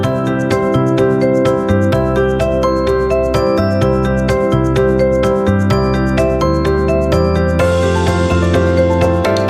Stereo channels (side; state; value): both; identical; correlation 1.00